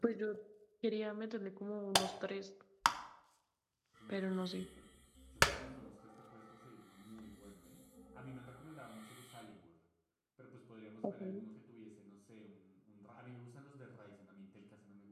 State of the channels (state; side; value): identical; both; correlation 1.00